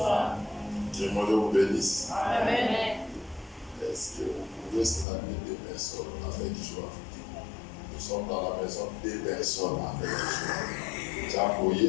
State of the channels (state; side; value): drops out; right; at 5.1 s